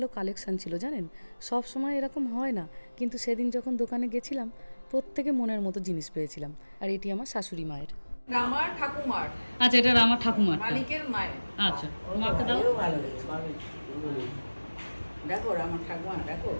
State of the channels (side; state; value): both; inverted; correlation -1.00